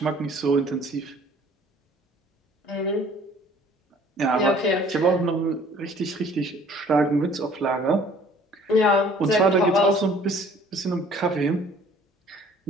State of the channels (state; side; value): normal; both; correlation 0.54